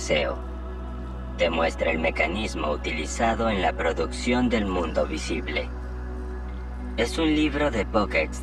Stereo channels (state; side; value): identical; both; correlation 1.00